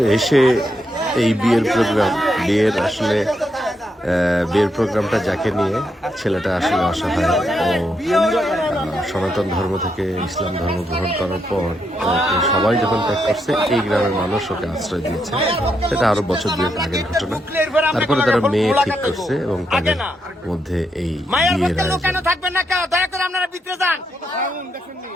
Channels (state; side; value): normal; both; correlation 0.80